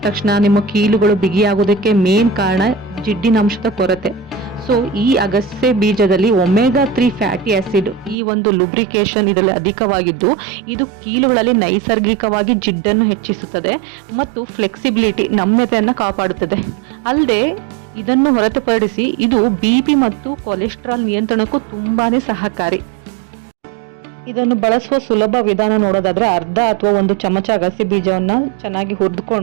ತಕ್ಷಣ ನಿಮ್ಮ ಕೀಲುಗಳು ಬಿಗಿಯಾಗೋದಕ್ಕೆ ಮೇನ್ ಕಾರಣ ಜಿಡ್ಡಿನ ಅಂಶದ ಕೊರತೆ. ಸೊ ಈ ಅಗಸೆ ಬೀಜದಲ್ಲಿ ಒಮೆಗಾ 3 ಫ್ಯಾಟಿ ಆಸಿಡ್ ಈ ಒಂದು ಲುಬ್ರಿಕೇಶನ್ ಇದರಲ್ಲಿ ಅಧಿಕವಾಗಿದ್ದು, ಇದು ಕೀಲುಗಳಲ್ಲಿ ನೈಸರ್ಗಿಕವಾಗಿ ಜಿಡ್ಡನ್ನು ಹೆಚ್ಚಿಸುತ್ತದೆ ಮತ್ತು ಫ್ಲೆಕ್ಸಿಬಿಲಿಟಿ ನಮ್ಯತೆಯನ್ನು ಕಾಪಾಡುತ್ತದೆ. ಅಲ್ಲದೆ ಇದನ್ನು ಹೊರತುಪಡಿಸಿ ಇದು BP ಮತ್ತು ಕೊಲೆಸ್ಟ್ರಾಲ್ ನಿಯಂತ್ರಣಕ್ಕೂ ತುಂಬಾನೇ ಸಹಕಾರಿ. ಇದನ್ನು ಬಳಸುವ ಸುಲಭ ವಿಧಾನ ನೋಡೋದಾದ್ರೆ, ಅರ್ಧ ಅಥವಾ 1 ಚಮಚ ಅಗಸೆ ಬೀಜವನ್ನ ಚೆನ್ನಾಗಿ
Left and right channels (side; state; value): left; drops out; at 8.2 s